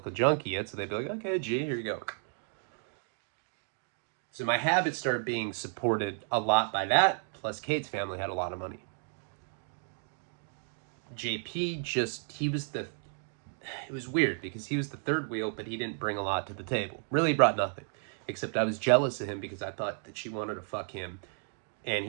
junkie yet, so they'd be like, okay, G, here you go. So my habits started being supported a lot by that, plus Kate's family had a lot of money. JP it was weird because he was the third wheel, but he didn't bring a lot to the table. Really brought nothing. Except I was jealous of him because I thought that she wanted to fuck him. And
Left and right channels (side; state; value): left; silent; 56 dB below the other